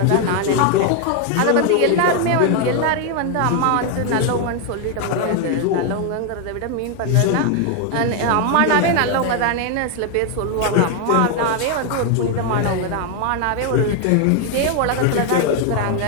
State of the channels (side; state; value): both; different; correlation 0.01